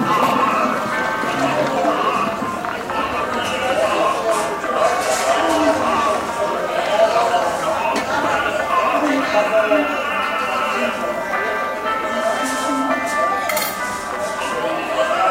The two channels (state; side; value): identical; both; correlation 1.00